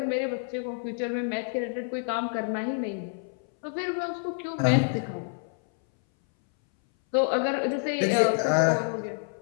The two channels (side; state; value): right; silent; 59 dB below the other